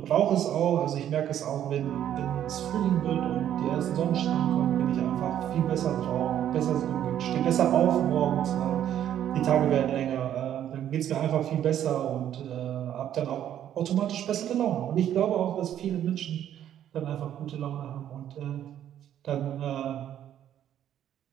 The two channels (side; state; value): left; quieter; 10.8 dB